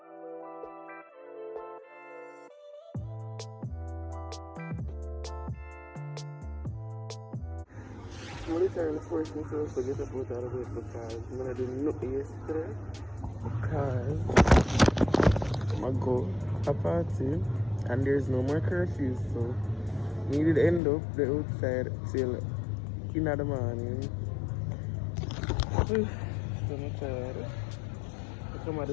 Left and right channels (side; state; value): right; drops out; at 20.8 s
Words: I'm literally forcing myself to get up out of the bed because I'm gonna do nothing yesterday because I'm gonna go a party and there's no more curfew, so we did end up the outside till in the morning. So I'm tired. I come at